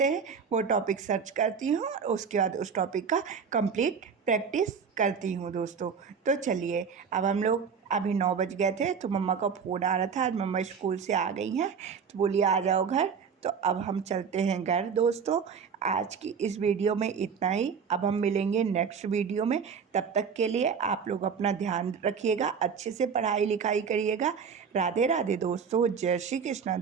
हैं वो टॉपिक सर्च करती हूँ, और उसके बाद उस टॉपिक का कंप्लीट प्रैक्टिस करती हूँ दोस्तों। तो चलिए, अब हम लोग अभी 9 बज गए थे, तो मम्मा का फ़ोन आ रहा था, आज मम्मा स्कूल से आ गई हैं, तो बोली आ जाओ घर। तो अब हम चलते हैं घर दोस्तों। आज की इस वीडियो में इतना ही, अब हम मिलेंगे नेक्स्ट वीडियो में। तब तक के लिए आप लोग अपना ध्यान रखिएगा, अच्छे से पढ़ाई लिखाई करिएगा। राधे राधे दोस्तों, जय श्री कृष्णा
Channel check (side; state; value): left; quieter; 6.3 dB